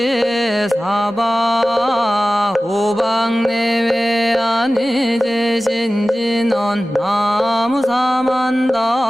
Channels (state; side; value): normal; both; correlation 0.96